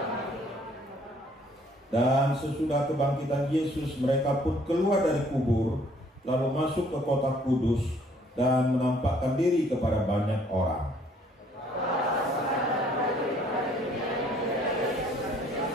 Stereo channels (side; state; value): both; normal; correlation 0.61